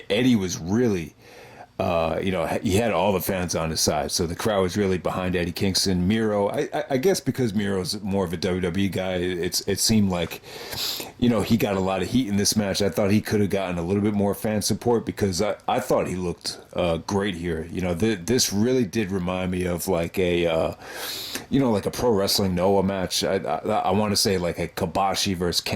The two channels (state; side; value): identical; both; correlation 1.00